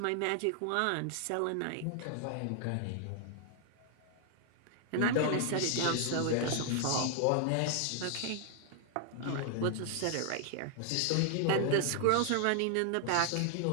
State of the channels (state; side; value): different; both; correlation 0.00